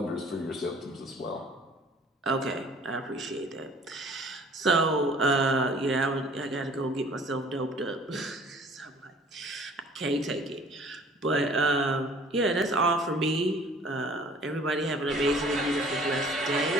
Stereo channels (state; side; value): normal; both; correlation 0.52